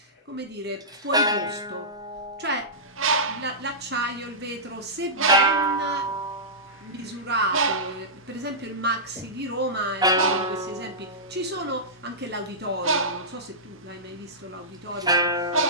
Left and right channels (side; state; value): both; normal; correlation -0.16